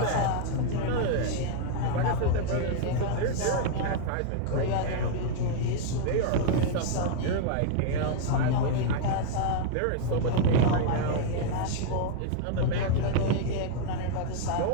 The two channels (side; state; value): both; different; correlation 0.00